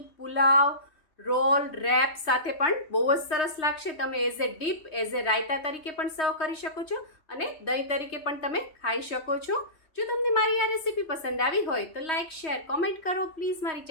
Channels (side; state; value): right; late; 3.2 ms